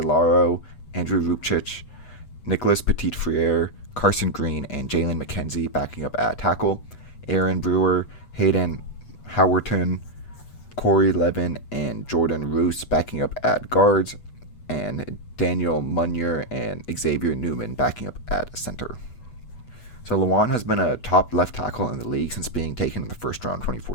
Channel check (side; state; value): right; late; 8.1 ms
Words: Andrew Rupchich, Nicholas Petit-Frere, Carson Green, and Jalen McKenzie backing up at tackle, Aaron Brewer, Hayden Howerton, Corey Levin, and Jordan Roos backing up at guards, and Daniel Munyer and Xavier Newman backing up at center. So Lewan has been a top left tackle in the league since being taken in the 1st round